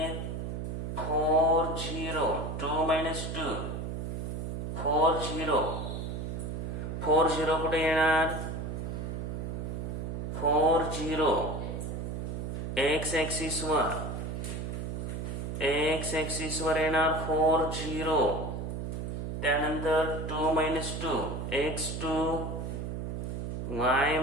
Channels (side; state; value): right; noise; hum, 4 dB below the sound